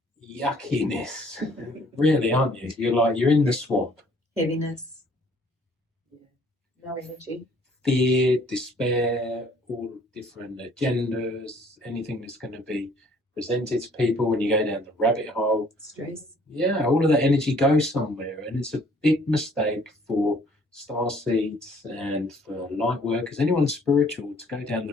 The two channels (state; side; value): normal; both; correlation 0.59